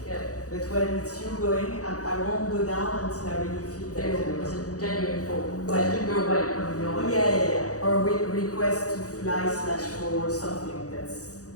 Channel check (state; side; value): late; right; 0.66 ms